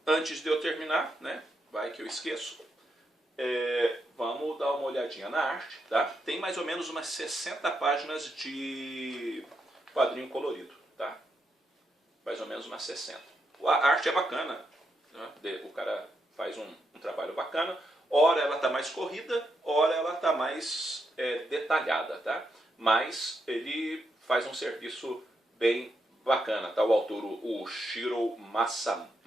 antes de eu terminar, né, vai que eu esqueço, vamos dar uma olhadinha na arte, tá? Tem mais ou menos umas 60 páginas de quadrinho colorido, tá? Mais ou menos umas 60. A arte é bacana, né? O cara faz um trabalho bacana, ora ela está mais corrida, ora ela está mais detalhada, tá? Mas ele faz um serviço bem bacana, tá? O autor, o Shiro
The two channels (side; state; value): both; normal; correlation 0.81